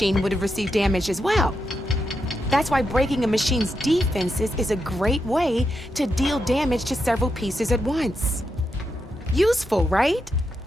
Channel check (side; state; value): both; normal; correlation 0.84